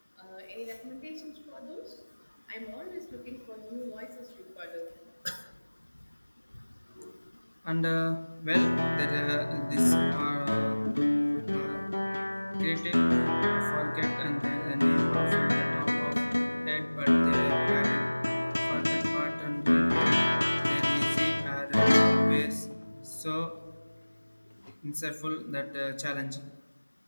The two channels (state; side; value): inverted; both; correlation -1.00